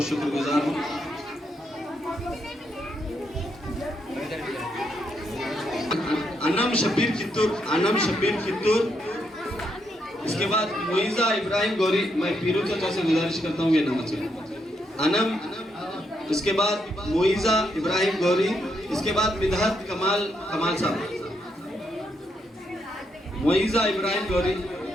शुक्रगुजार हूँ। अनम शब्बीर कित्तूर, अनम शब्बीर कित्तूर। इसके बाद मोइजा इब्राहिम गौरी। मैं पीरू चाचा से गुजारिश करता हूँ कि नाम से अनम। इसके बाद मोइजा इब्राहिम गौरी। इसके बाद मिदहत कमाल, कमाल साहब। मोइजा इब्राहिम गौरी,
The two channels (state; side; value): normal; both; correlation 0.78